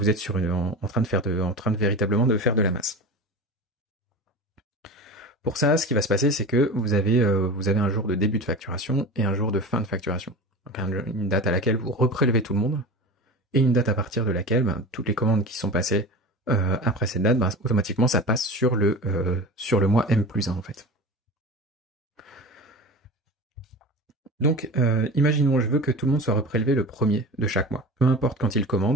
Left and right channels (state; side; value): normal; both; correlation 0.32